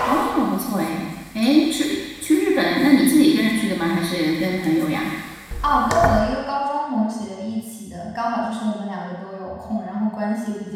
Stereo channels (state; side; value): identical; both; correlation 1.00